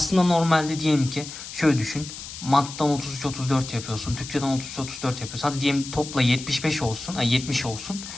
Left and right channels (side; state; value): left; noise; hiss, 11 dB below the sound